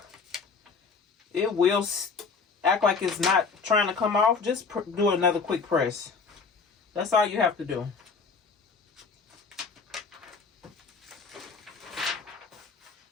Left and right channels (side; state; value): right; quieter; 5.0 dB